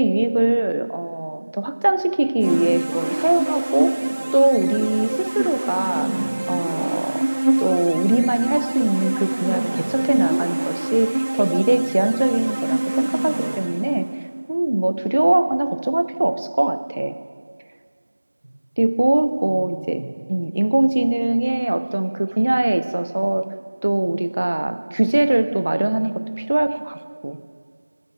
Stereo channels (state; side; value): inverted; both; correlation -1.00